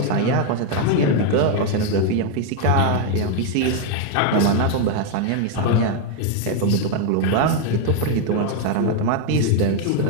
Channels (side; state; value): both; different; correlation 0.01